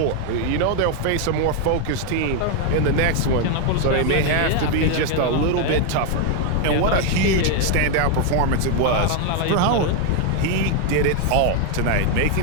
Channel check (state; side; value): different; both; correlation 0.01